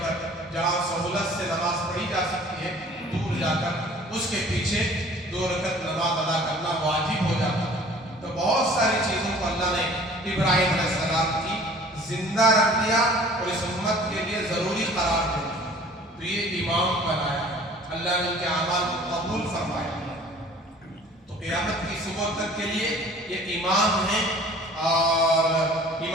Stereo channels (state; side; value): normal; both; correlation 0.49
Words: کر، جہاں سہولت سے نماز پڑھی جا سکتی ہے، دور جا کر اس کے پیچھے 2 رکعت نماز ادا کرنا واجب ہو جاتا ہے۔ تو بہت ساری چیزوں کو اللہ نے ابراہیم علیہ السلام کی زندہ رکھ دیا اور اس امت کے لیے ضروری قرار دے دیا۔ تو یہ امام بنایا، اللہ نے ان کے اعمال کو قبول فرمایا، تو قیامت کی صبح تک کے لیے یہ امام ہیں، اور